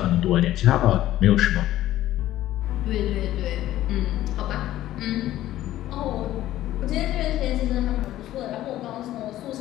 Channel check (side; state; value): right; quieter; 14.1 dB